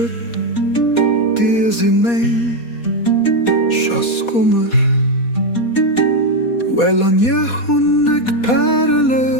dir sie mig, kommer Wellan jag hunnek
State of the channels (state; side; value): late; right; 4.2 ms